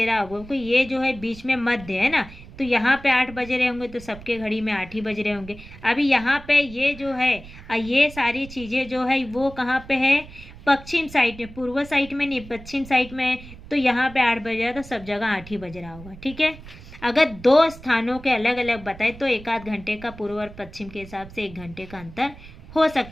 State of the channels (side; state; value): right; noise; rumble, 17 dB below the sound